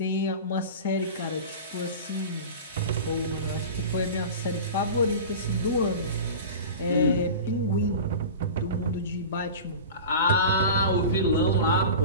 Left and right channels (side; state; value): both; inverted; correlation -0.32